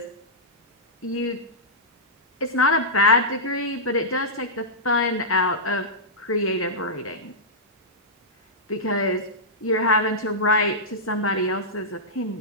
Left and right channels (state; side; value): normal; both; correlation -0.13